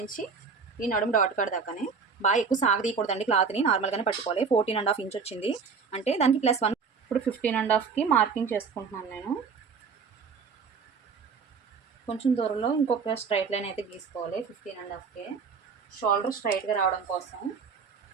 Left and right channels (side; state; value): left; quieter; 5.5 dB